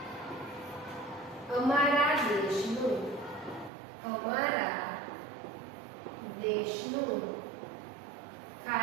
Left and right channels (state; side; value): drops out; left; at 3.7 s